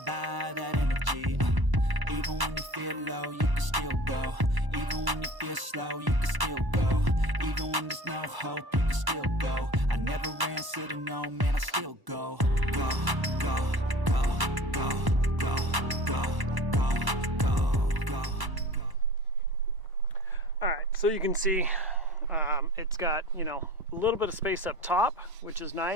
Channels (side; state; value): left; late; 1.0 ms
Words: by that energy. Even when you feel low, you can still go. Even when you feel slow, you can still go. Even when there's no hope, you can still go. I never answer to no, man, I still go. Go, go, go, go, go, go, go, go, go, go. Alright, so you can see it's got, you know, a little bit of space up top, which is